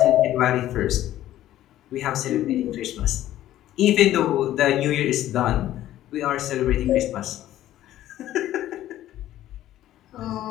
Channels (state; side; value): quieter; right; 13.4 dB